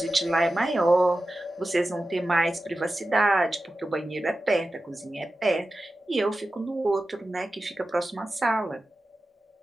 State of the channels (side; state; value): both; normal; correlation 0.93